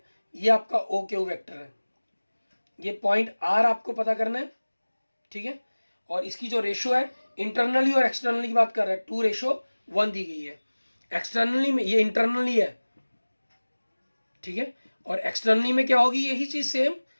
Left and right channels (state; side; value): inverted; both; correlation -1.00